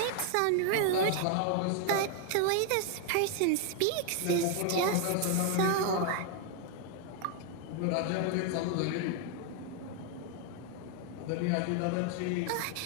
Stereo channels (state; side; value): different; both; correlation 0.00